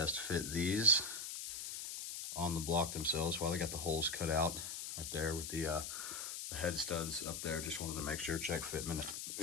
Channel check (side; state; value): left; noise; hiss, 6 dB below the sound